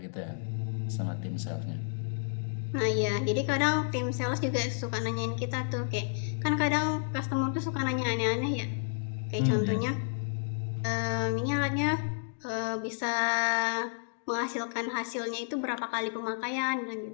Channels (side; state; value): right; silent; digital silence